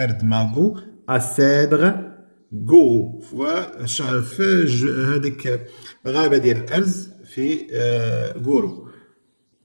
ماغو. أسيدغ غو، في هذيك غابة ديال الأرز في غورو.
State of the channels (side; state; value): both; inverted; correlation -1.00